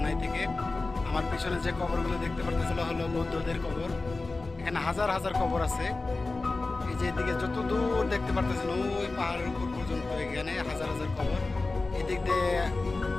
থেকে। আমার পিছনে যে কবরগুলো দেখতে পারতেছিল হলো বৌদ্ধদের কবর। এখানে হাজার হাজার কবর আছে। এই যে এদিকে যত দূর দেখতে পারতেছেন ওই পাহাড়ের উপর পর্যন্ত এখানে হাজার হাজার কবর। এদিক দিয়ে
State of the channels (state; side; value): quieter; right; 3.4 dB